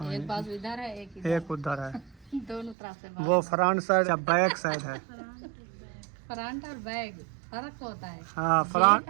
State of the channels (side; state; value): left; drops out; at 2.8 s